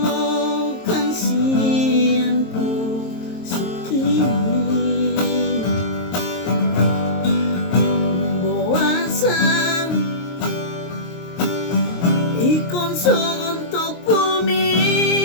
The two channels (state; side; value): late; right; 23 ms